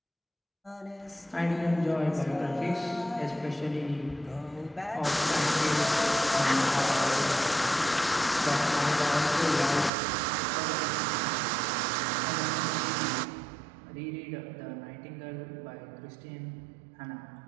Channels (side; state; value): left; drops out; at 9.9 s